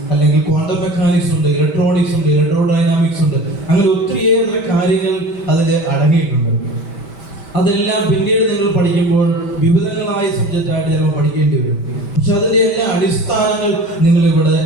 അല്ലെങ്കിൽ ക്വാണ്ടം മെക്കാനിക്സ് ഉണ്ട്, ഇലക്ട്രോണിക്സ് ഉണ്ട്, ഇലക്ട്രോഡൈനാമിക്സ് ഉണ്ട്. അങ്ങനെ ഒത്തിരിയേറെ കാര്യങ്ങൾ അതിൽ അടങ്ങിയിട്ടുണ്ട്. അതെല്ലാം പിന്നീട് നിങ്ങൾ പഠിക്കുമ്പോൾ വിവിധങ്ങളായ സബ്ജക്റ്റായിട്ട് ചിലപ്പോൾ പഠിക്കേണ്ടി വരും. പക്ഷെ അതിൻ്റെ എല്ലാ അടിസ്ഥാനങ്ങൾ നിങ്ങൾ ഇവിടെ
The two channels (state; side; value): late; right; 5.1 ms